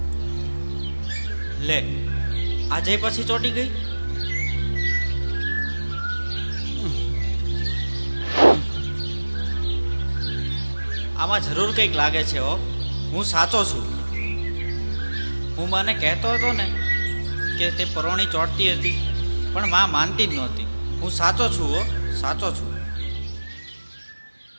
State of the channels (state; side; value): inverted; both; correlation -1.00